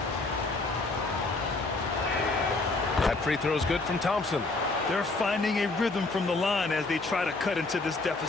That free throw is good from Thompson. They're finding a rhythm from the line as they try to cut into this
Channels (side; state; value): right; quieter; 3.4 dB